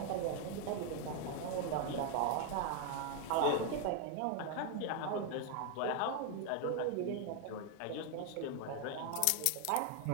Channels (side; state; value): both; different; correlation 0.00